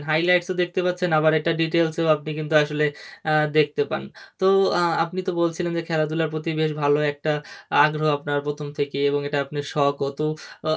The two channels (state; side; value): identical; both; correlation 1.00